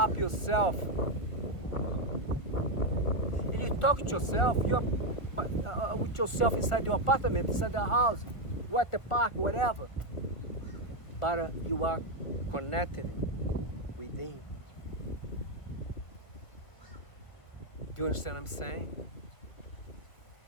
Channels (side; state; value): right; late; 1.7 ms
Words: yourself. You talk to yourself, you're with yourself inside your apartment, inside the house, or at the park, whatever. But you are connected within. Do you understand what I'm saying?